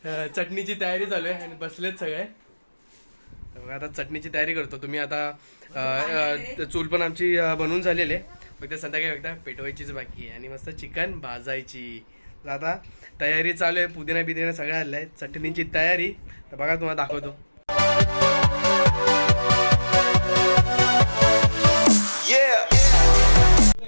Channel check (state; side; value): inverted; both; correlation -1.00